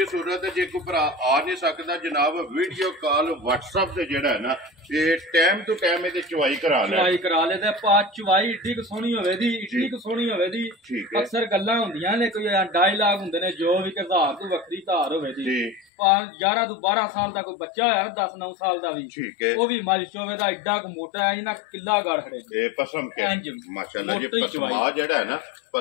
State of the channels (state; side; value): drops out; right; at 15.9 s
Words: ਸੂਰਤ ਜੇ ਕੋਈ ਭਰਾ ਆ ਨਹੀਂ ਸਕਦਾ ਜਨਾਬ ਵੀਡੀਓ ਕਾਲ WhatsApp ਤੇ ਜਿਹੜਾ ਹੈ ਨਾ ਇਹ ਟਾਈਮ ਟੂ ਟਾਈਮ ਇਹਦੀ ਚਵਾਈ ਕਰਾ ਲੈ ਚਵਾਈ ਕਰਾ ਲੈ ਤੇ ਪਾ ਚਵਾਈ ਏਡੀ ਕੁ ਸੋਹਣੀ ਹੋਵੇ ਦੀ ਏਡੀ ਕੁ ਸੋਹਣੀ ਹੋਵੇ ਦੀ ਠੀਕ ਹੈ ਅਕਸਰ ਗੱਲਾਂ ਹੁੰਦੀਆਂ ਨੇ ਕੋਈ ਡਾਇਲਾਗ ਹੁੰਦੇ ਨੇ ਜੋ ਵੀ ਕਿ ਧਾਰ ਤੋਂ ਵੱਖਰੀ ਧਾਰ ਹੋਵੇ ਦੀ ਜੀ 11 ਤੋਂ 12 ਸਾਲ ਦਾ ਕੋਈ ਬੱਚਾ ਹੋਇਆ 10-9 ਸਾਲ ਦਾ ਵੀ ਠੀਕ ਹੈ ਉਹ ਵੀ ਮਾਲਿਸ਼ ਹੋਵੇ ਦਾ ਏਡਾ ਕੁ ਮੋਟਾ ਹੈ ਨਾ ਕਿੱਲਾ ਗੜ ਖੜੇ ਨੇ ਇਹ ਪਸਮ ਕੇ ਇੰਜ ਮਾਸ਼ਾਅੱਲਾ ਜੀ ਮੋਟੀ ਪਸਮਾ ਚਵਾਈ। ਜਿਹੜਾ ਹੈ ਨਾ